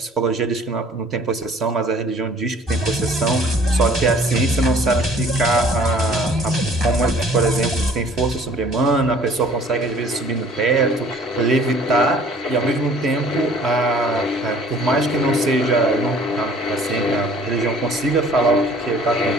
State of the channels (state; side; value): normal; both; correlation 0.53